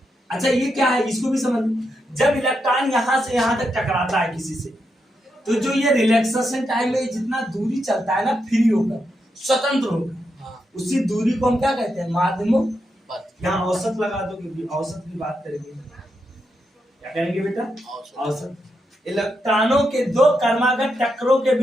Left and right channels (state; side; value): normal; both; correlation 0.84